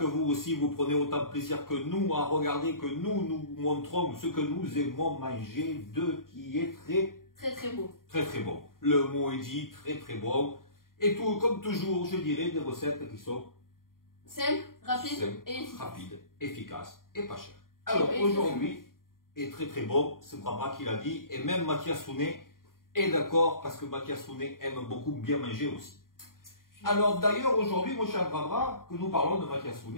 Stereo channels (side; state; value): right; late; 0.91 ms